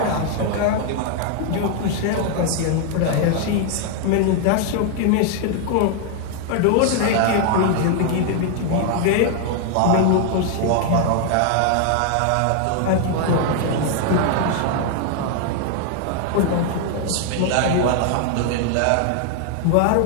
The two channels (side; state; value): both; different; correlation 0.00